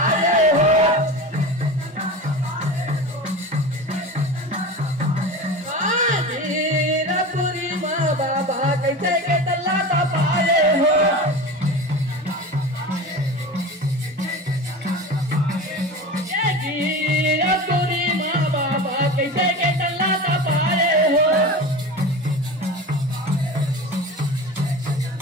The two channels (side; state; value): both; normal; correlation 0.30